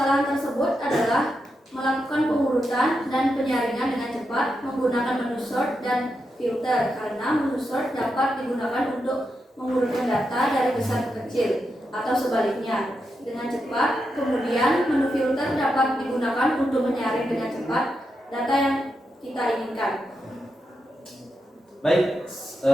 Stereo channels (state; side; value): normal; both; correlation 0.86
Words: tersebut adalah melakukan pengurutan dan penyaringan dengan cepat menggunakan menu sort dan filter, karena menu sort dapat digunakan untuk mengurutkan data dari besar ke kecil atau sebaliknya dengan cepat. Kemudian menu filter dapat digunakan untuk menyaring dengan cepat data yang kita inginkan. Baik,